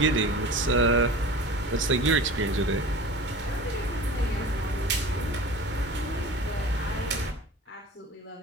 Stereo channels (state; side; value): normal; both; correlation 0.37